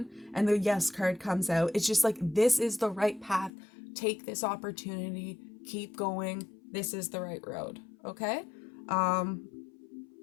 and the yes card comes out, it's just like, this is the right path. Take this opportunity, keep going. This is the right road. Okay?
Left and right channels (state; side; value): drops out; right; at 3.5 s